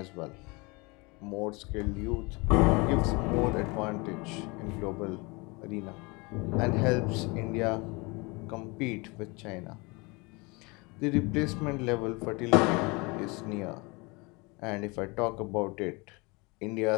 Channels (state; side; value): quieter; right; 27.0 dB